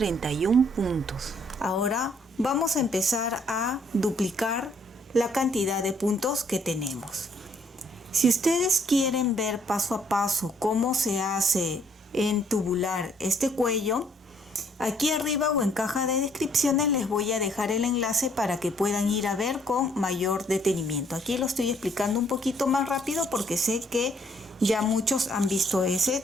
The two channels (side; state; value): both; normal; correlation 0.66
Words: puntos. Ahora vamos a empezar a duplicar la cantidad de puntos que tenemos. Si ustedes quieren ver paso a paso cómo se hace en tubular este cuello, aquí arriba o en caja de descripciones les voy a dejar el enlace para que puedan ir a ver con mayor detenimiento. Aquí lo estoy explicando un poquito más rápido porque sé que ya muchos han visto ese